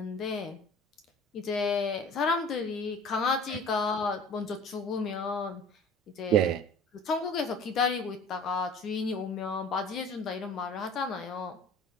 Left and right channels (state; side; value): normal; both; correlation 0.44